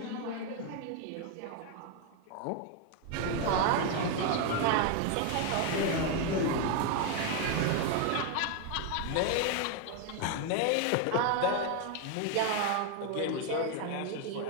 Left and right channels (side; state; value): both; different; correlation 0.01